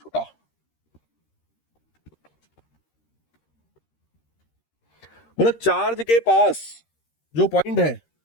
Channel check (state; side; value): late; right; 13 ms